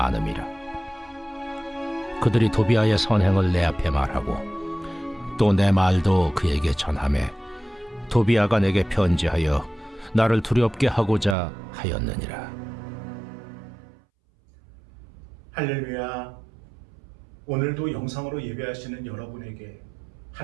그들이 도비아의 선행을 내 앞에 말하고 또 내 말도 그에게 전하매 도비아가 내게 편지하여 나를 두렵게 하고자 하였느니라. 할렐루야. 오늘도 영상으로 예배하시는 여러분에게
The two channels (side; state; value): left; drops out; at 11.4 s